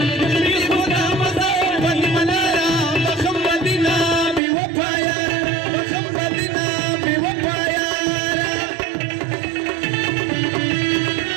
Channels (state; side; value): drops out; left; at 4.4 s